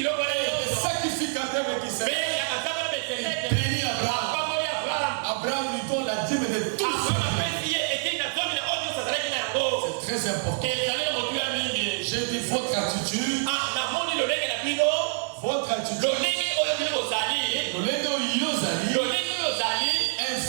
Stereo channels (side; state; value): left; silent; 55 dB below the other